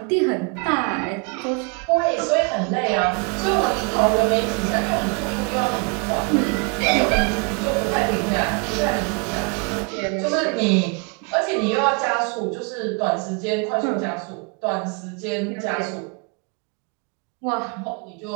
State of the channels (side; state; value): left; quieter; 34.8 dB